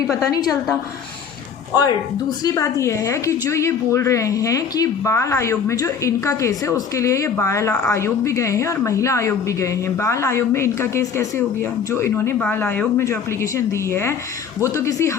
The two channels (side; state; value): right; quieter; 6.6 dB